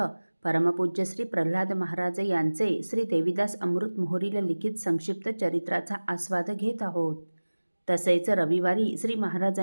परमपूज्य श्री प्रल्हाद महाराज यांचे श्री देवीदास अमृत मोहोरीला लिखित संक्षिप्त चरित्राचा आस्वाद घेत आहोत. तसेच रविवारी श्री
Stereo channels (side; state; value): both; inverted; correlation -1.00